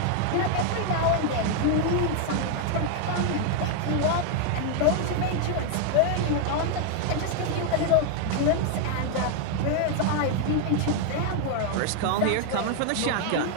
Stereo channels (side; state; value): both; different; correlation 0.00